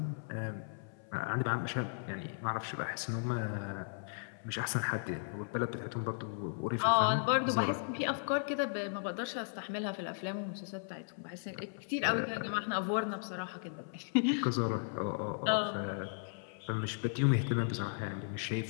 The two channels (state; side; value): silent; right; 54 dB below the other